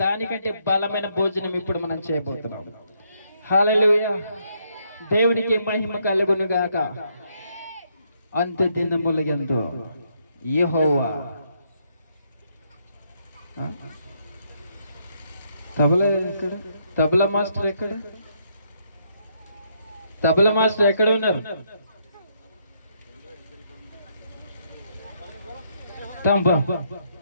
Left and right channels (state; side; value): inverted; both; correlation -0.74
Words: దానికంటే బలమైన భోజనం ఇప్పుడు మనం చేయబోతున్నాం. హల్లెలూయా. దేవునికి మహిమ కలుగును గాక. అంత్య దినములయందు యెహోవా. తబలా ఎక్కడ? తబలా మాస్టర్ ఎక్కడ? తబలా మాస్టర్ ఎక్కడ ఉన్నారు?